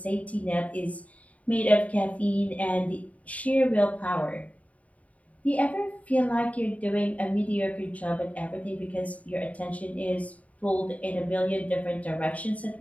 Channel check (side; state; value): right; late; 0.068 ms